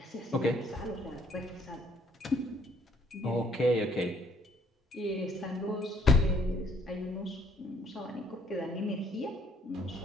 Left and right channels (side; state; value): both; normal; correlation 0.64